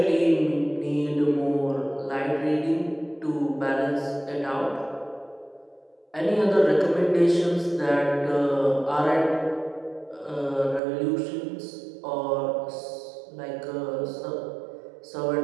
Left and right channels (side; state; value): left; drops out; at 10.8 s